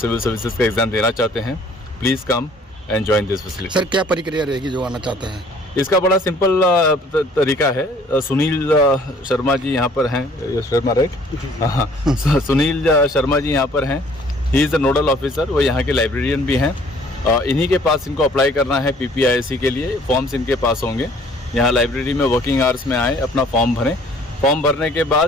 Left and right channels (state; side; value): normal; both; correlation 0.56